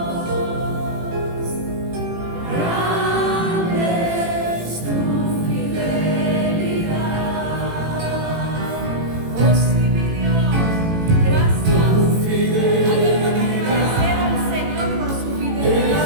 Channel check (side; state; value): left; late; 18 ms